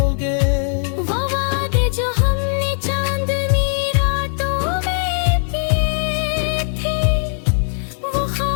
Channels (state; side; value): silent; right; 57 dB below the other